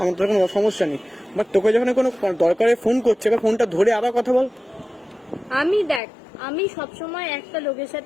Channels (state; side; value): drops out; right; at 6.0 s